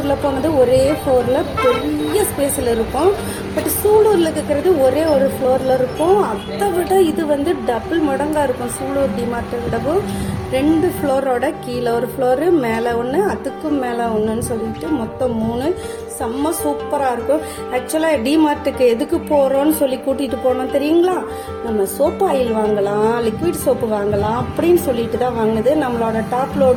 போனது ஒரே ஃப்ளோர்ல பெரிய ஸ்பேஸ்ல இருக்கும். பட் சூலூர்ல இருக்கிறது ஒரே ஒரு ஃப்ளோர்ல இருக்கும். அதை விட இது வந்து டபுள் மடங்கா இருக்கும். சூலூர் டிமார்ட்டை விடவும் 2 ஃப்ளோரோட கீழே ஒரு ஃப்ளோரு, மேலே ஒன்று, அதுக்கும் மேலே ஒன்றுன்னு சொல்லிட்டு மொத்தம் 3. செம்ம சூப்பராக இருக்கும். ஆக்சுவலாக டிமார்ட்டுக்கு எதுக்கு போகிறோன்னு சொல்லி கூட்டிகிட்டு போனோம் தெரியுங்களா? நம்ம சோப்பு ஆயில் வாங்கலாம், லிக்விட் சோப்பு வாங்கலாம் அப்படின்னு சொல்லிட்டு தான் வாங்கினது. நம்மளோட டாப்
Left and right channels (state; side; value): identical; both; correlation 1.00